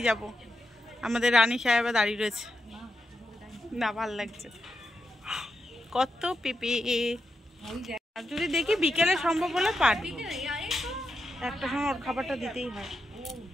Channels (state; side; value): normal; both; correlation 0.86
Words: যাব। আমাদের রানী সাহেবা দাঁড়িয়ে রয়েছে, না ভাল লাগছে, কত পেঁপে। আর যদি দেখি বিকেলে সম্ভব হলে পারবি, একটা সময় ওর খাবারটা দিতেই হয়।